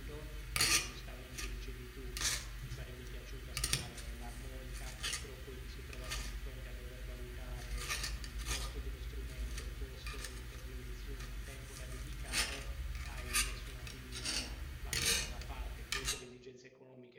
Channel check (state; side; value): identical; both; correlation 1.00